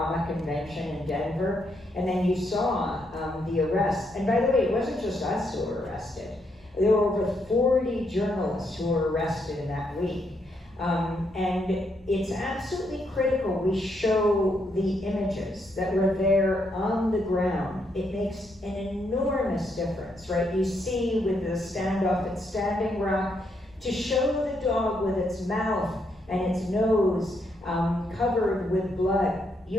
convention in Denver. And then you saw the arrest. And by the way, it wasn't just us who were arrested. There were over 40 journalists who were arrested in that week. And it's absolutely critical we show the images that were there on the ground. It makes an enormous difference, right? You see with the standoff at Standing Rock, to show the dog with its mouth and its nose covered with blood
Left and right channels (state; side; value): normal; both; correlation 0.77